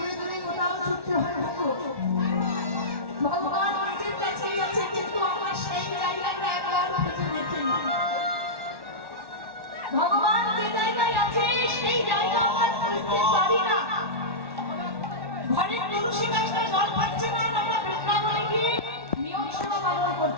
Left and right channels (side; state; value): left; late; 1.1 ms